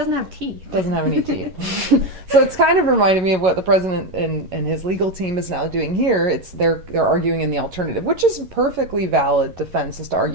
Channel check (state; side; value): late; left; 11 ms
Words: have teeth. Doesn't have any teeth. So it's kind of reminded me of what the president and his legal team is now doing here. They're arguing in the alternative, which is a perfectly valid defense, is to